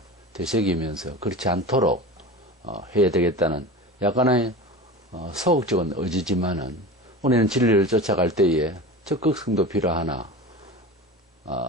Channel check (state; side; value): normal; both; correlation 0.31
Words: 되새기면서 그렇지 않도록 해야 되겠다는 약간의 소극적인 의지지만은 우리는 진리를 쫓아갈 때에 적극성도 필요하나